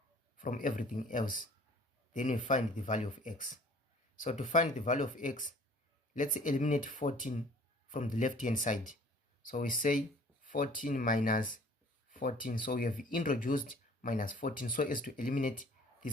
from everything else. Then we find the value of x. So to find the value of x, let's eliminate 14 from the left hand side. So we say 14 minus 14. So we have introduced minus 14 so as to eliminate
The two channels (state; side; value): normal; both; correlation 0.52